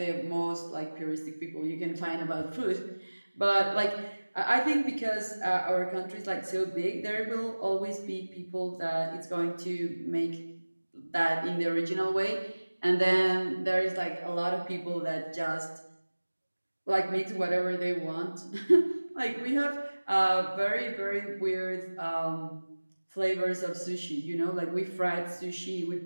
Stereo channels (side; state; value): both; inverted; correlation -1.00